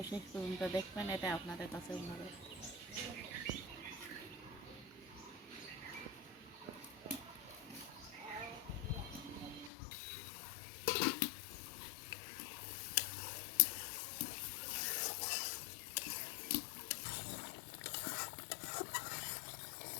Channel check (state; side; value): drops out; right; at 9.7 s